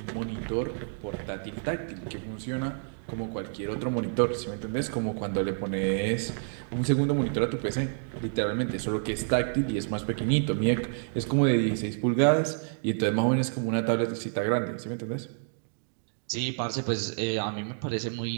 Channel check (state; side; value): silent; left; digital silence